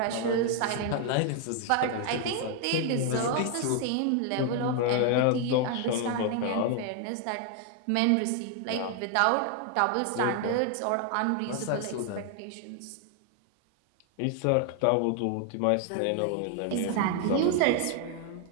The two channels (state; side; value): different; both; correlation 0.00